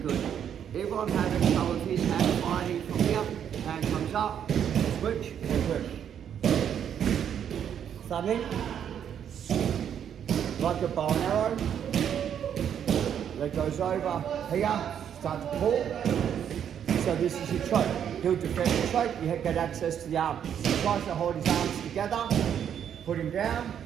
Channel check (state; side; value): quieter; left; 8.9 dB